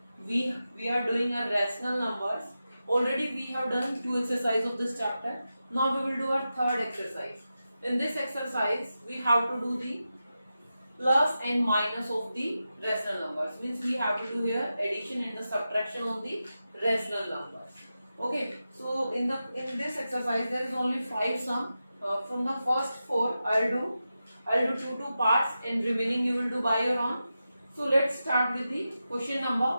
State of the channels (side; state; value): both; inverted; correlation -0.91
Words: We are doing our rational numbers. Already we have done 2 exercises of this chapter. Now we will do our third exercise. In this exercise we have to do the plus and minus of the rational numbers. Means we have to do here addition and the subtraction of the rational numbers. Okay, so in this exercise there is only 5 sum. From the first 4 I'll do two parts and remaining you will do by your own. So let's start with the question